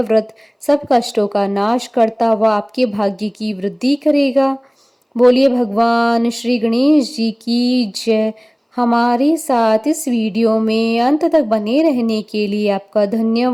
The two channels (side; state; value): both; identical; correlation 1.00